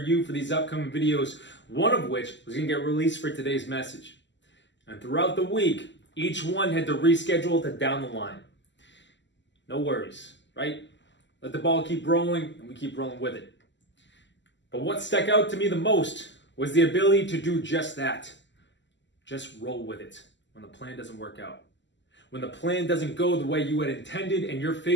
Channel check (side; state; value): right; late; 0.53 ms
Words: for these upcoming videos, one of which was going to get released for today's message. And throughout the week, each one had to reschedule to down the line. No worries, right? Let the ball keep rolling, and we keep rolling with it. But what stuck out to me the most was the ability to do just that. Just roll with it when the plan doesn't work out. When the plan doesn't go the way you had intended and you're